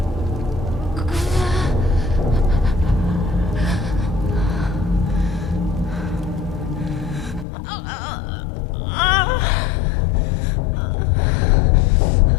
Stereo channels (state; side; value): drops out; right; at 7.5 s